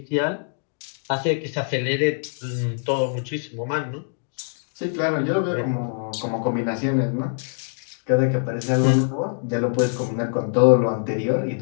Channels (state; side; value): silent; right; 59 dB below the other